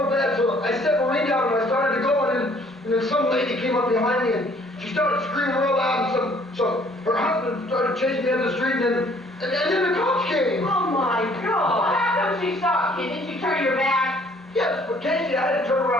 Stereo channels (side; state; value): both; normal; correlation 0.59